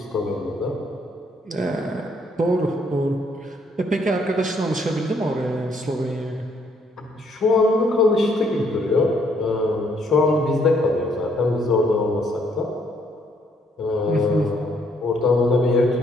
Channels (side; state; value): both; normal; correlation 0.69